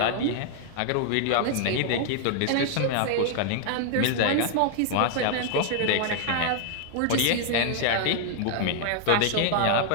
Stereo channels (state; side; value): different; both; correlation 0.00